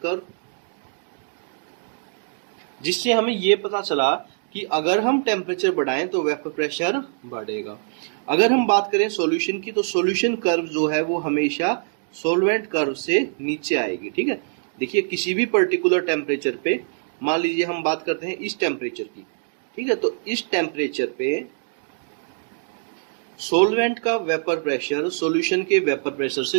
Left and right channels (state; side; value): silent; left; digital silence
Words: जिससे हमें ये पता चला कि अगर हम टेम्परेचर बढ़ाएं तो वेपर प्रेशर बढ़ेगा। अगर हम बात करें सॉल्यूशन की, तो सॉल्यूशन कर्व जो है वो हमेशा सॉल्वेंट कर्व से नीचे आएगी। ठीक है, देखिए किसी भी पर्टिकुलर टेम्परेचर पे, मान लीजिए हम बात करते हैं इस टेम्परेचर की। ठीक है, तो इस टेम्परेचर पे सॉल्वेंट का वेपर प्रेशर सॉल्यूशन के वेपर प्रेशर